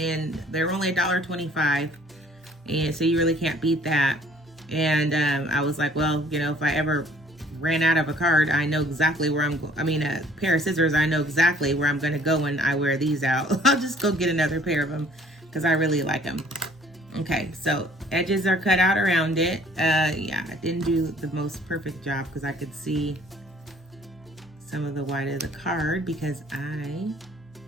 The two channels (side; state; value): both; normal; correlation 0.57